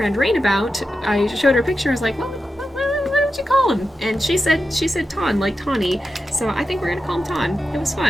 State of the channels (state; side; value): normal; both; correlation 0.90